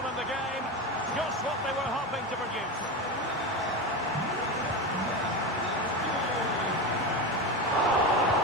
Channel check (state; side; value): normal; both; correlation 0.19